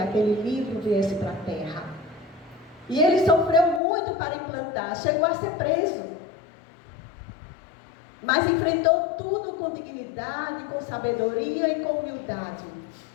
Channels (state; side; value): drops out; right; at 3.8 s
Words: aquele livro viesse para a Terra. E ele sofreu muito para implantar, chegou a ser preso. Mas enfrentou tudo com dignidade, com sabedoria e com humildade.